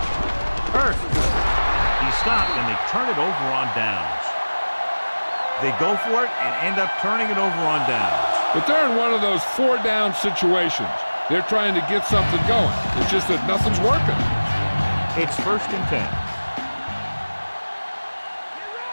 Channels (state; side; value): inverted; both; correlation -1.00